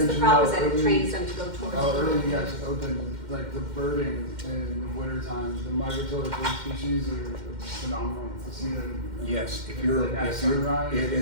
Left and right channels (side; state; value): left; late; 2.1 ms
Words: the problem is that it trains them to go towards. Earlier you guys opened, like the birding in the winter time, the migratory bird species are phenomenal to see them. Yes, At sunrise, it